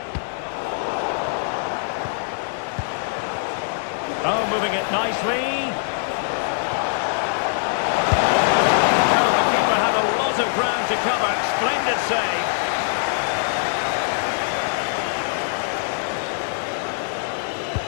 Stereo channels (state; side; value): silent; right; 64 dB below the other